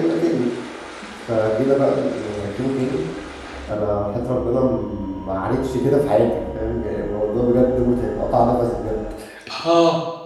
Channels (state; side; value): identical; both; correlation 1.00